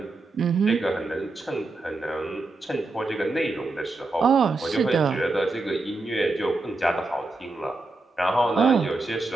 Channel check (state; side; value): quieter; left; 3.2 dB